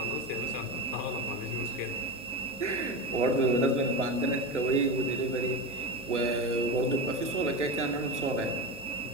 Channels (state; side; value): normal; both; correlation 0.22